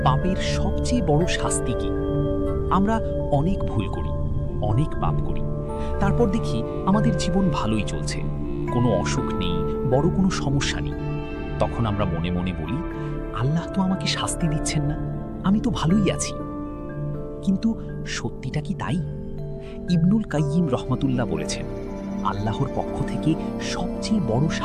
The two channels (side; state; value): both; identical; correlation 1.00